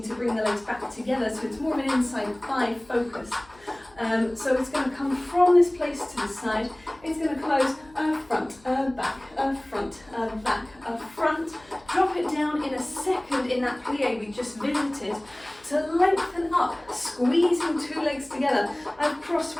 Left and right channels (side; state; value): left; noise; hum, 27 dB below the sound